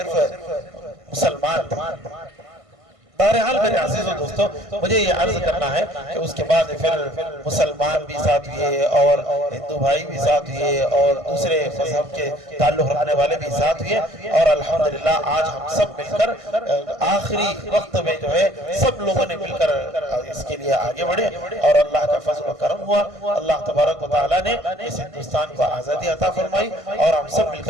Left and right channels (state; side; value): late; left; 1.5 ms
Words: مسلمان تھے۔ بہرحال میرے عزیز و دوستو، مجھے یہ عرض کرنا ہے کہ اس کے بعد پھر مسلمان بھی ساتھ ہوئے اور ہندو بھائی بھی ساتھ ہوئے اور دوسرے مذہب کے تعلق رکھنے والے بھی ساتھ ہوئے، اور الحمدللہ آج ہم سب مل کر آخری وقت میں جو ہے سب لوگوں نے مل کر اس کے لیے آگے بڑھے اور اللہ کا فضل و کرم ہوا۔ اللہ تبارک و تعالیٰ نے اس ہندوستان کو آزادی عطا فرمائی اور ہم سب مل